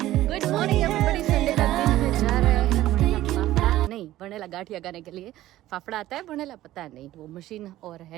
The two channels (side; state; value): left; quieter; 14.9 dB